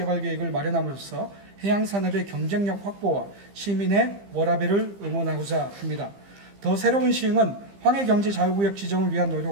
마련함으로써 해양산업의 경쟁력 확보와 시민의 워라밸을 응원하고자 합니다. 더 새로운 시흥은 황해경제자유구역 지정을 위한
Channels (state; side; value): late; left; 15 ms